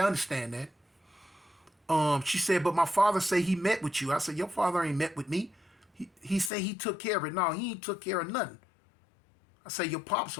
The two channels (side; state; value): right; drops out; at 6.5 s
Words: I understand that. She said, but my father say he met with you. I said, your father ain't met with me. He said he took care of it. No, he ain't took care of nothing. I say, your pop's